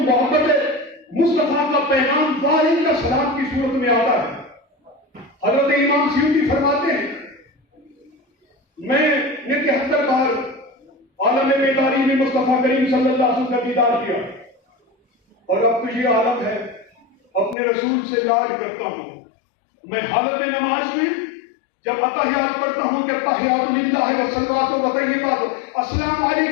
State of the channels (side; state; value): right; drops out; at 17.6 s